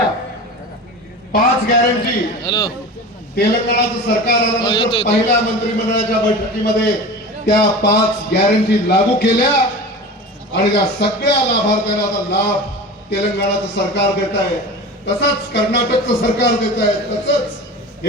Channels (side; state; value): both; normal; correlation 0.33